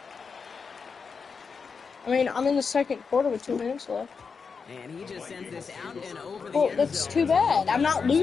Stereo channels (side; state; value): right; quieter; 5.4 dB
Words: I mean, I'm in the second quarter with 2 minutes left. And he just sends this out and over the Well, end that's zone. too bad. I'm not